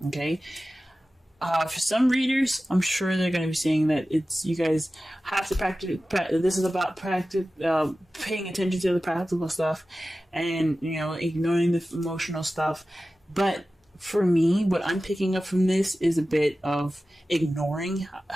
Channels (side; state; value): both; normal; correlation 0.95